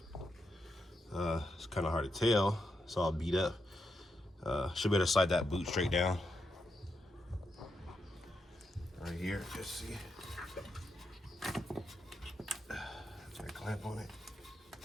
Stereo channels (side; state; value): both; normal; correlation 0.83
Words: it's kind of hard to tell, it's all beat up. Should be able to slide that boot straight down. Right here, just see. Got a clamp on it.